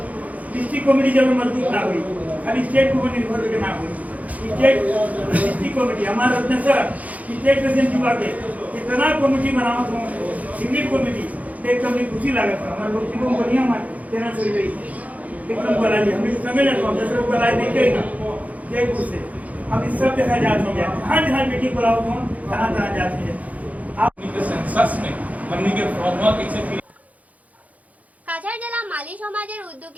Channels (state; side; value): late; left; 0.072 ms